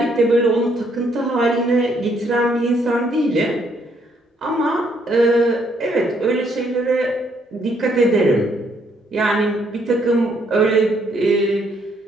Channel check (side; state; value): both; normal; correlation 0.70